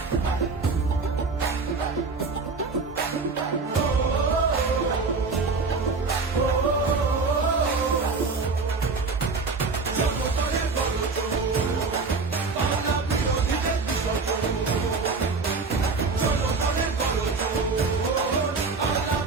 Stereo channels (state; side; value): quieter; left; 4.3 dB